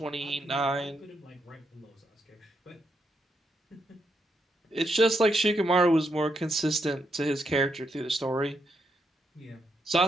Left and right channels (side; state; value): both; normal; correlation 0.80